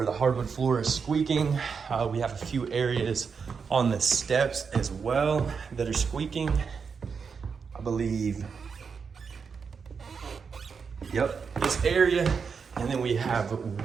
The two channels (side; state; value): left; quieter; 5.8 dB